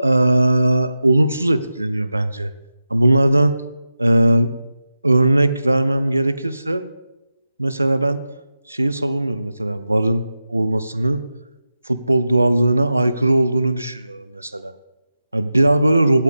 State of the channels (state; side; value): inverted; both; correlation -0.91